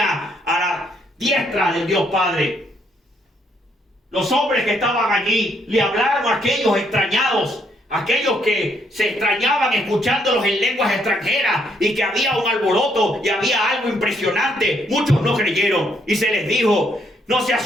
a la diestra del Dios Padre. Los hombres que estaban allí le hablaron a aquellos extrañados, aquellos que se extrañaban escuchándolos en lenguas extranjeras y que había un alboroto y había algo impresionante. Muchos no creyeron y se les dijo, no se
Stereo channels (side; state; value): both; normal; correlation 0.72